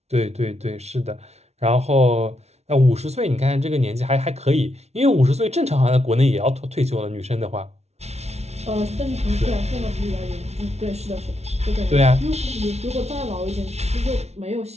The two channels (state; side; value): late; left; 0.31 ms